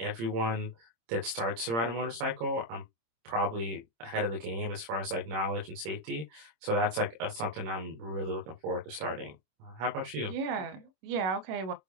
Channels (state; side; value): late; left; 26 ms